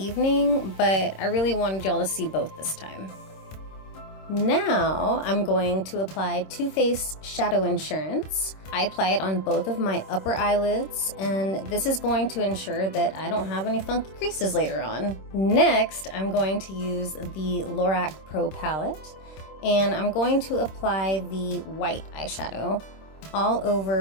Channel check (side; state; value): right; late; 26 ms